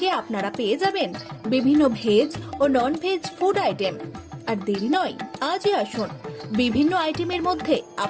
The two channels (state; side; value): identical; both; correlation 1.00